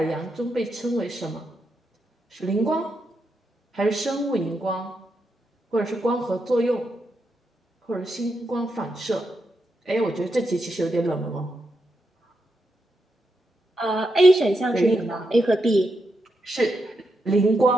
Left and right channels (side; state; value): both; normal; correlation 0.84